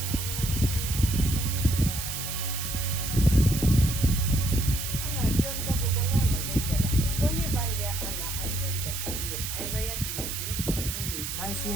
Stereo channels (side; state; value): right; noise; hiss, 5 dB below the sound